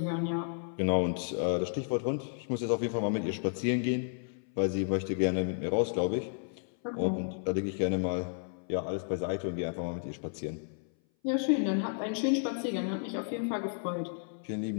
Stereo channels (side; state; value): right; silent; 56 dB below the other